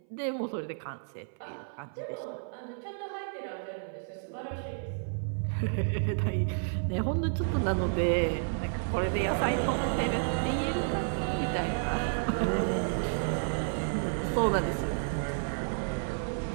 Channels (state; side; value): silent; left; 57 dB below the other